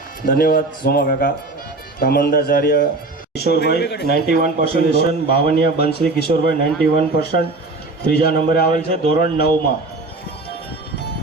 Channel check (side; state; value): left; quieter; 3.3 dB